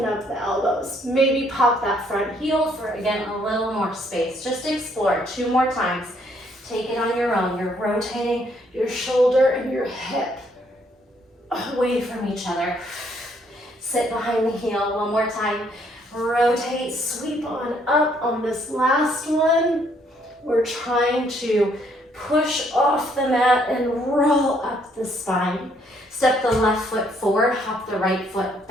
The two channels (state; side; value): normal; both; correlation 0.68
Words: up the elbows. Maybe pop that front heel for, again, a little more space. Just explore 2 more times. Take it on your own. You're rotating your shoulder and your hip away from each other. Sit behind the heel 1 more time. Rotate, sweep on up on this last one. We're trying to push off the mat and roll up the spine. Step the left foot forward, hop the right foot